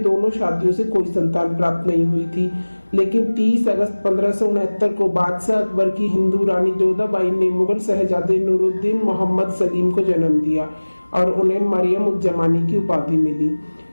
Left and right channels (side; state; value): both; inverted; correlation -1.00